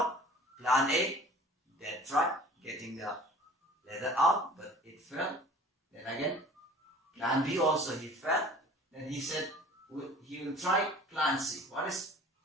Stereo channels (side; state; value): both; normal; correlation 0.46